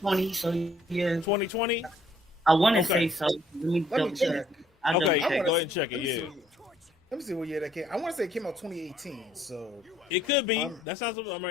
So yeah, 2020. I want to say so. Let me check. Okay, go ahead and check it. Yeah. Let me see what year that came. I want to say it came out 2018. So it could be. That sounds. I'm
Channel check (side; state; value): both; normal; correlation 0.64